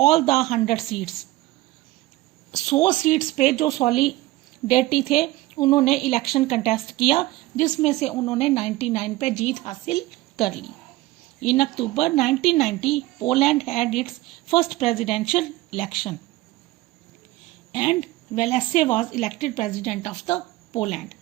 the 100 seats, 100 seats पे जो सॉलिडेरिटी थे उन्होंने इलेक्शन कंटेस्ट किया, जिसमें से उन्होंने 99 पे जीत हासिल कर ली। In October 1990 Poland had its first presidential election and Walesa was elected president of the Poland.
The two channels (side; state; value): left; quieter; 18.1 dB